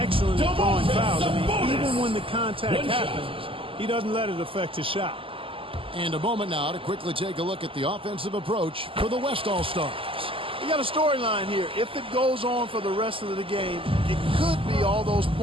at drawing fouls. I mean, even when the contact happens, he doesn't let it affect his shot. And a moment now to quickly take a look at the offensive approach for the West All-Stars. We got a storyline here. If it goes on for the rest of the game, it could be all those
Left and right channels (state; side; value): late; left; 0.26 ms